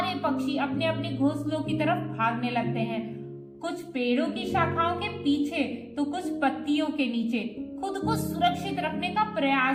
पक्षी अपने अपने घोंसलों की तरफ भागने लगते हैं। कुछ पेड़ों की शाखाओं के पीछे तो कुछ पत्तियों के नीचे खुद को सुरक्षित रखने का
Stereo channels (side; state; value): both; identical; correlation 1.00